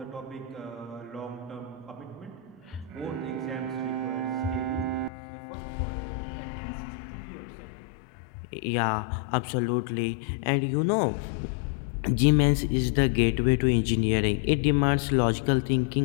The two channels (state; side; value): drops out; right; at 5.1 s